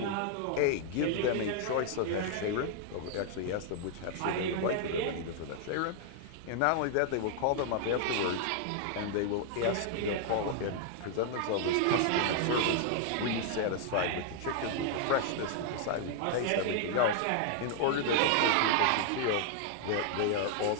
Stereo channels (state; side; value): different; both; correlation 0.00